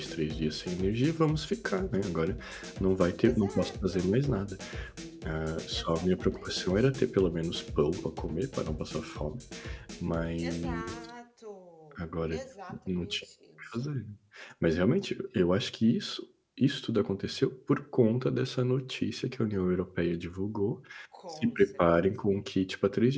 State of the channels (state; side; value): identical; both; correlation 1.00